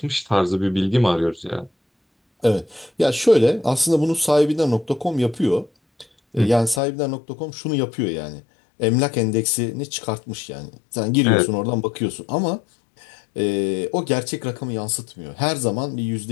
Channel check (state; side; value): drops out; right; at 6.8 s